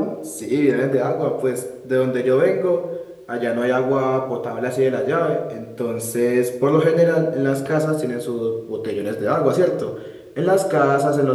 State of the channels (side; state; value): both; identical; correlation 1.00